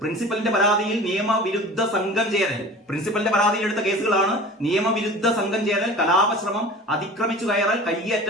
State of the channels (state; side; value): normal; both; correlation 0.40